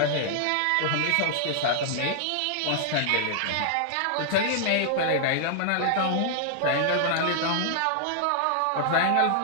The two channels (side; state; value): both; different; correlation -0.01